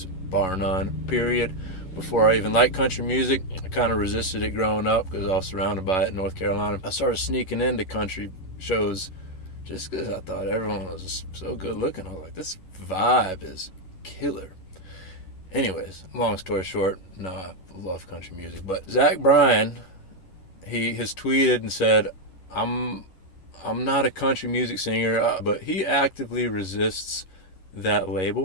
bar none, period. Before I even liked country music, I kind of resisted it growing up because I was surrounded by it in North Carolina. I started sneaking into country shows just because I thought everyone was just so good looking. I was like, this vibe is killer. Anyways, long story short, no, I love country music. But Bryan, he has tweeted and said, I'm not a country music singer, but he actively resists that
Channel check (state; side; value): late; right; 11 ms